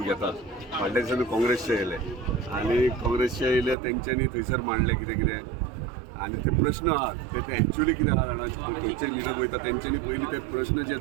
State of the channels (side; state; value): left; drops out; at 3.8 s